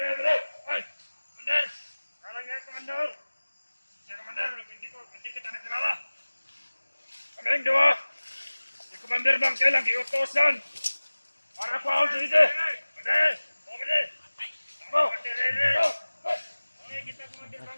ay, komander, kalang nga komander. Si komander, hindi kita nakilala. Kaming dua, si komander Bangkel ang iutosan para po ako dito. Komander, komander, tamo, okay, kita komander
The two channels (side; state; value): both; inverted; correlation -1.00